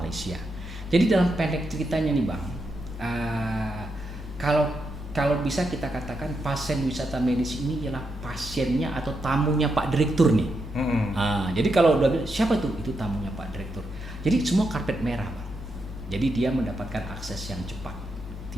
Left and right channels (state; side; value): normal; both; correlation 0.83